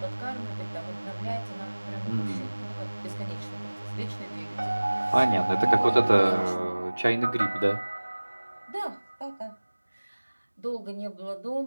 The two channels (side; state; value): both; inverted; correlation -1.00